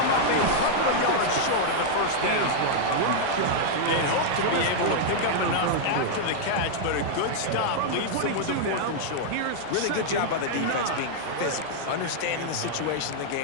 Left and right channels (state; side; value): different; both; correlation -0.01